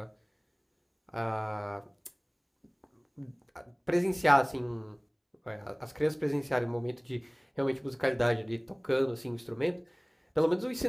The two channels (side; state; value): both; identical; correlation 1.00